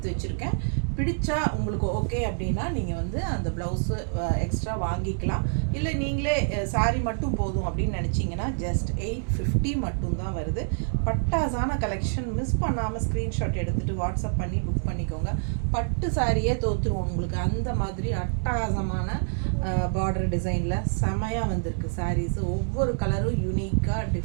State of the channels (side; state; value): left; silent; digital silence